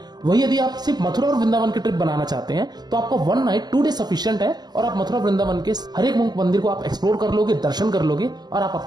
वही यदि आप सिर्फ मथुरा और वृंदावन की ट्रिप बनाना चाहते हैं तो आपको 1 नाइट 2 डे सफिशिएंट है और आप मथुरा वृंदावन के हर एक मंदिर को आप एक्सप्लोर कर लोगे, दर्शन कर लोगे और आप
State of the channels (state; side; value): late; left; 0.20 ms